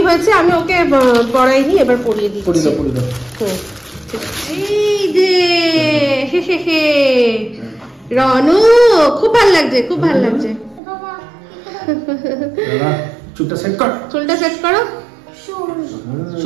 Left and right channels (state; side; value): drops out; left; at 10.8 s